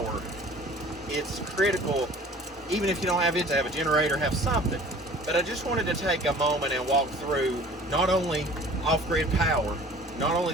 it's critical, even if you don't have it, to have a generator, have something. But I just wanted to take a moment and walk through not only off-grid power, not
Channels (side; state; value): both; normal; correlation 0.47